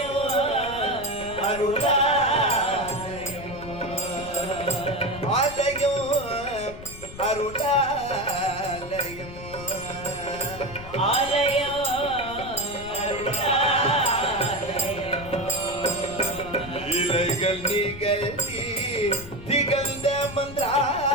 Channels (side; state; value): left; noise; rumble, 14 dB below the sound